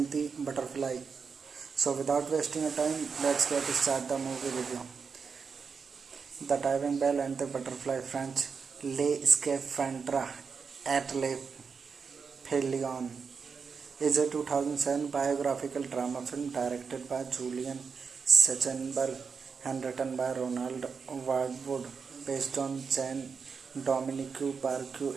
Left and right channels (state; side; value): quieter; left; 5.6 dB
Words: the Butterfly. So without wasting a time, let's get start the movie review. The Diving Bell and the Butterfly, French Les Scaphandres et les Pelions, is a 2007 biographical drama film directed by Julian Sachenberg and written by Ronald Wardwood, based on Jean-Dominique